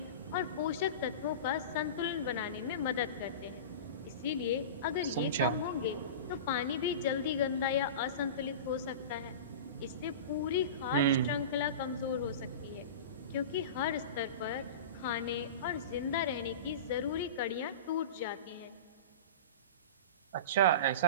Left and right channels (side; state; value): both; inverted; correlation -0.30